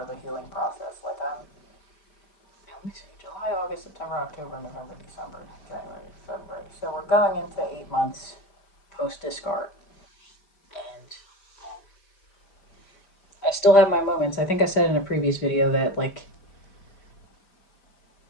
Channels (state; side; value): late; right; 5.0 ms